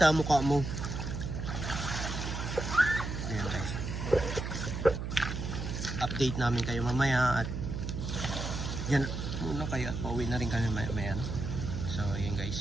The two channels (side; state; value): right; noise; hum, 4 dB below the sound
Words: mukha mo? Ayan guys. Update namin kayo mamaya at yan muna kayo at pauwi na rin kami maya no? So yun